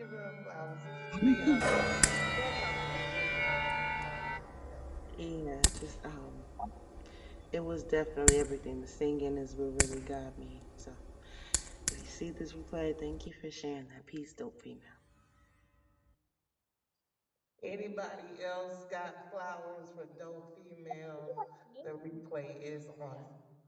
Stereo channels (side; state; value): both; identical; correlation 1.00